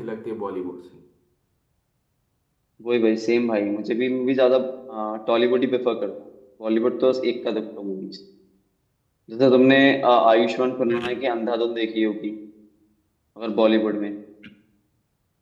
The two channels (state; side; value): identical; both; correlation 1.00